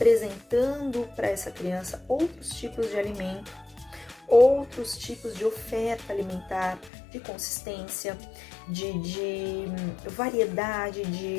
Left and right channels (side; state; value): right; drops out; at 6.9 s